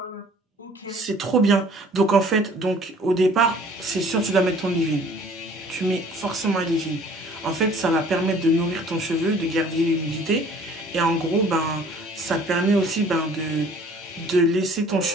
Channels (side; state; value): both; normal; correlation 0.53